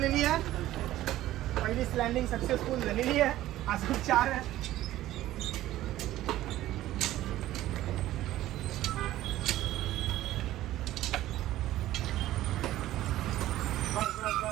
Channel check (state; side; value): quieter; left; 14.7 dB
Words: आहे. पहिली लँडिंग सक्सेसफुल झालेली आहे. अजून 4 आहे.